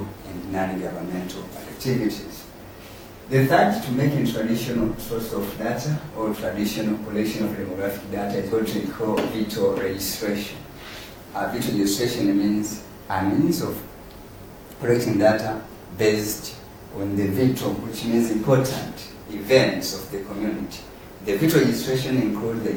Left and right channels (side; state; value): both; identical; correlation 1.00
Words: and non-governmental activities. The third, to make a traditional source of data or traditional collection of demographic data is what we call VITO registration. VITO registration means a means of collecting data based on the VITO, which means important events of the community. The VITO registration includes the